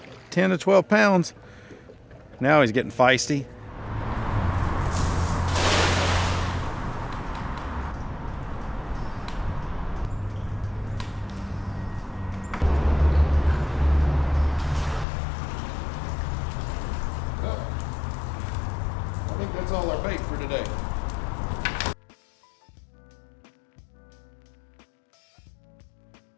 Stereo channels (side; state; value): right; drops out; at 15.1 s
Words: 10 to 12 pounds. Now he's getting feisty. I think that's all our bait for today.